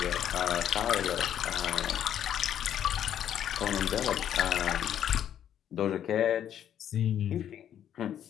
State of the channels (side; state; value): right; quieter; 10.1 dB